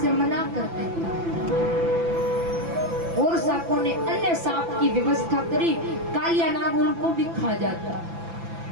मना कर देता और सांपों ने अन्य सांप की व्यवस्था करी। कालिया नाग उनको भी खा जाता।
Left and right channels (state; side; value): late; left; 5.9 ms